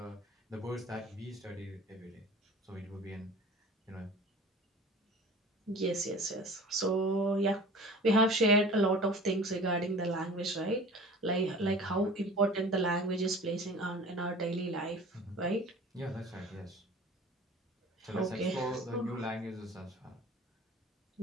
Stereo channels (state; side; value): normal; both; correlation 0.42